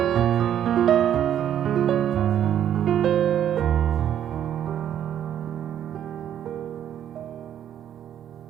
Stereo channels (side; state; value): left; quieter; 10.2 dB